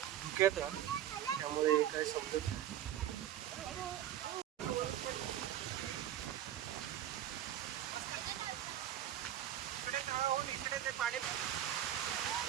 धुक्यात, त्यामुळे काय समजत नाही.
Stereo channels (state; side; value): quieter; left; 11.5 dB